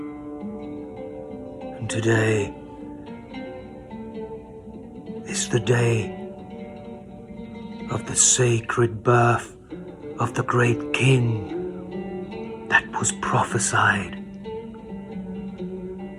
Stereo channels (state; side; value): identical; both; correlation 1.00